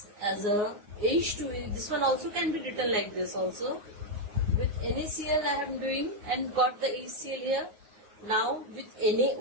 as a H2. This one also can be written like this also. With NaCl I am doing and got the HCl here. Now with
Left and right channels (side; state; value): left; late; 9.6 ms